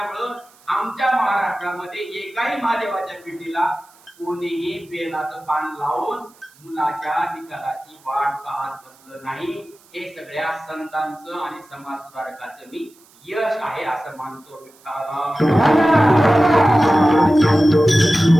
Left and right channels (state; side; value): noise; right; hiss, 29 dB below the sound